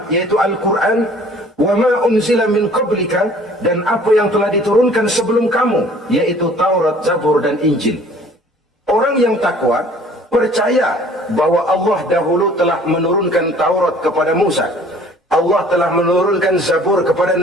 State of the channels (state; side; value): normal; both; correlation 0.53